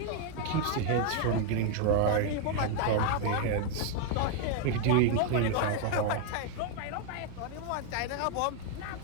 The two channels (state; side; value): different; both; correlation 0.00